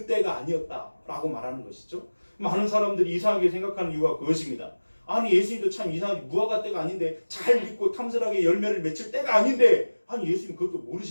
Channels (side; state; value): both; inverted; correlation -1.00